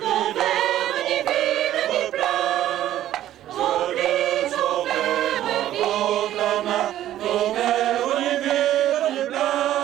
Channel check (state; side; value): quieter; left; 12.8 dB